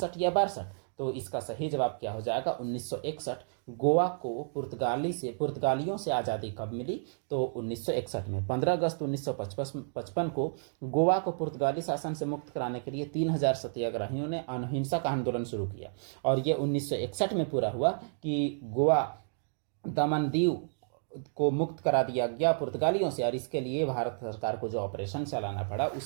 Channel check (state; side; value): silent; left; digital silence